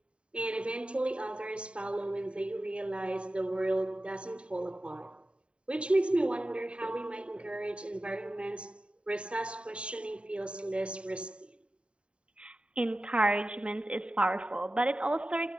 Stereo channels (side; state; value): left; late; 0.056 ms